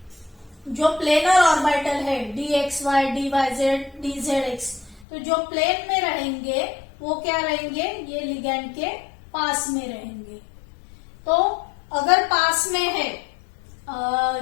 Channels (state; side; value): drops out; right; at 5.1 s